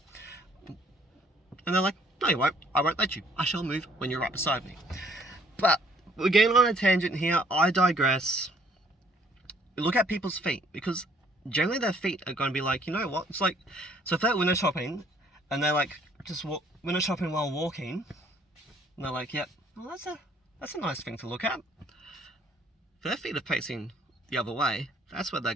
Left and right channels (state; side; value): normal; both; correlation 0.62